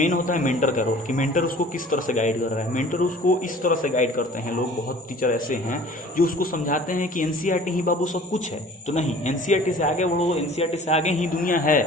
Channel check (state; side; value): normal; both; correlation 0.48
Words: होता है मेंटर का रोल, कि मेंटर उसको किस तरह से गाइड कर रहा है। मेंटर उसको इस तरह से गाइड करते हैं लोग, बहुत टीचर ऐसे हैं जो उसको समझाते हैं कि एनसीईआरटी ही बाबू सब कुछ है, तो नहीं, एनसीईआरटी से आगे बढ़ो, एनसीईआरटी से आगे ही दुनिया है,